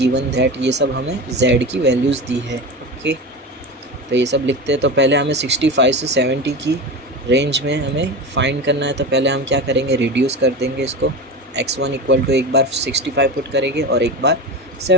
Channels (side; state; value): both; normal; correlation 0.25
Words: that, ये सब हमें z की वैल्यूज़ दी है। ओके, तो ये सब लिखते हैं। तो पहले हमें 65 से 70 की रेंज में हमें फाइंड करना है, तो पहले हम क्या करेंगे, रिड्यूस कर देंगे इसको। x1 = एक बार 65 पुट करेंगे और एक बार